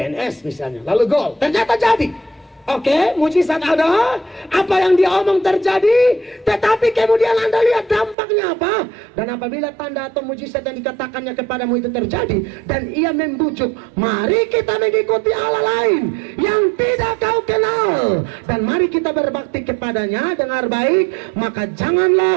misalnya. Lalu gol, ternyata jadi. Oke, mujizat ada, apa yang dia omong terjadi, tetapi kemudian Anda lihat dampaknya apa. Dan apabila tanda atau mujizat yang dikatakannya kepadamu itu terjadi, dan ia membujuk, mari kita mengikuti Allah lain yang tidak kau kenal, dan mari kita berbakti kepadanya, dengar baik, maka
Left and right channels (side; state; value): left; drops out; at 8.2 s